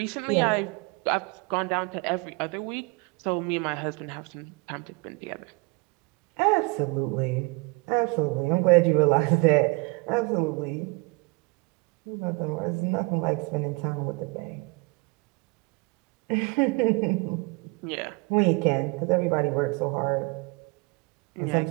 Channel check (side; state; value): left; quieter; 27.6 dB